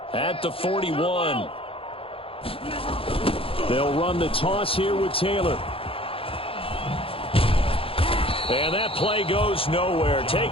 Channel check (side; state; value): right; late; 0.27 ms